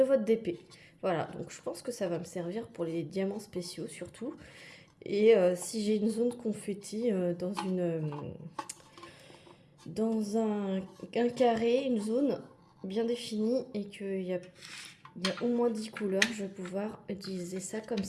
votre DP. Voilà, donc je pense que ça va me servir pour les diamants spéciaux surtout. Et si j'ai une zone confetti dans un carré, une zone bien définie et qu'il y a au moins 10 couleurs, je vais pouvoir utiliser ça comme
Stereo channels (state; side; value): identical; both; correlation 1.00